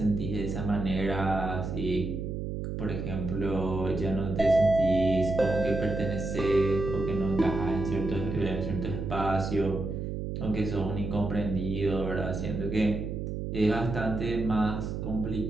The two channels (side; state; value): right; noise; hum, 4 dB below the sound